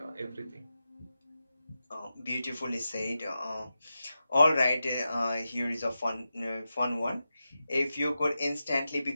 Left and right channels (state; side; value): inverted; both; correlation -0.91